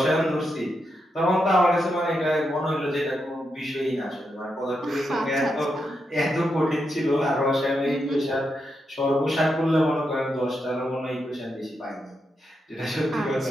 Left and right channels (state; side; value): normal; both; correlation 0.84